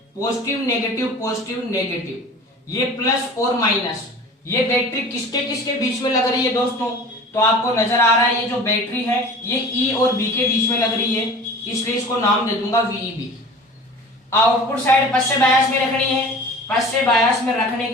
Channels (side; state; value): both; normal; correlation 0.41